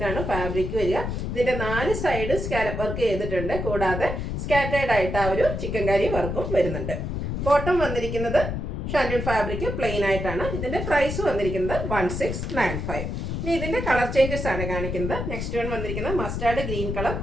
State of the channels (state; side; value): noise; left; rumble, 4 dB below the sound